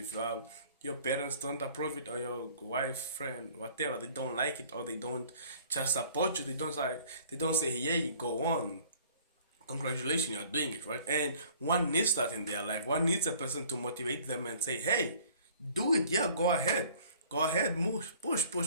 your parents don't approve it, or your wife, friend, whatever, they don't like it, or they don't just support you. They don't say, "Yeah, go on. Congratulations, you're doing it right." And one needs that in their life. One needs a person to motivate them and say, "Hey, do it. Yeah, go ahead, move, push."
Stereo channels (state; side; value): inverted; both; correlation -0.54